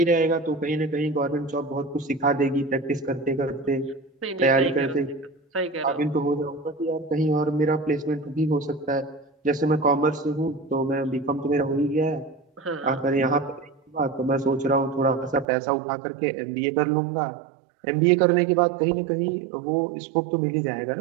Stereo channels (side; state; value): left; drops out; at 15.5 s